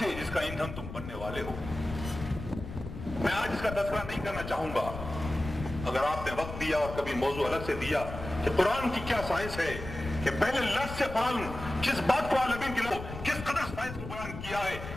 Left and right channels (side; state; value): left; noise; rumble, 10 dB below the sound